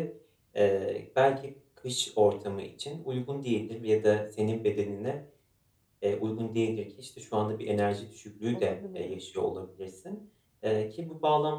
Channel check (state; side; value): identical; both; correlation 1.00